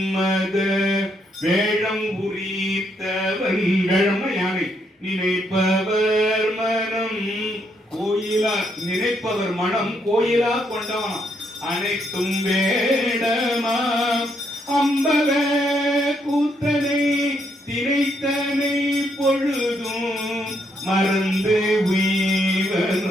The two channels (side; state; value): both; normal; correlation 0.75